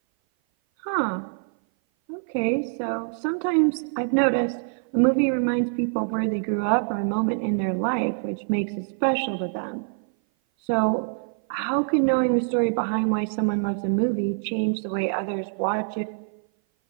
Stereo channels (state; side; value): silent; left; 57 dB below the other